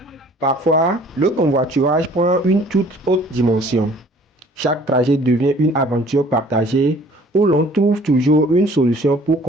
Parfois, le convoiturage prend une toute autre dimension. Chaque trajet devient une aventure partagée où l'on trouve toujours une solution pour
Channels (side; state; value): both; normal; correlation 0.54